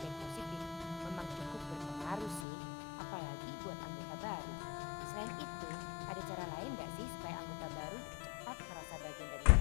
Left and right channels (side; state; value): right; drops out; at 2.5 s